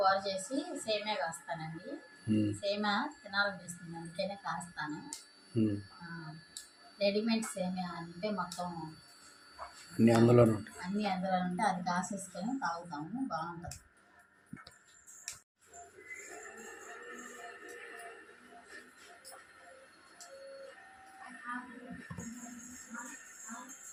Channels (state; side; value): identical; both; correlation 1.00